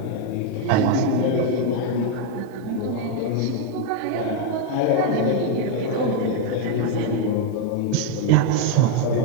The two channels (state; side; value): different; both; correlation 0.00